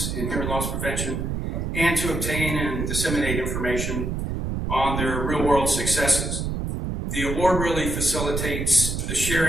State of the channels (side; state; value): right; noise; rumble, 2 dB below the sound